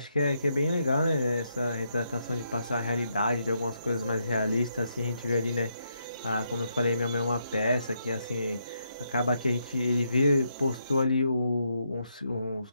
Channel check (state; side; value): inverted; both; correlation -0.79